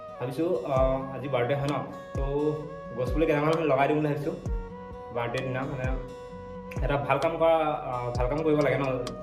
ভাবিছো আজি বাৰ্থডে হয় ন তো গছপুলি কেইটামান লগাই দিম বুলি ভাবিছো বাৰ্থডে দিনা মানে এটা ভাল কাম কৰিব লাগে ন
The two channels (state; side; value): identical; both; correlation 1.00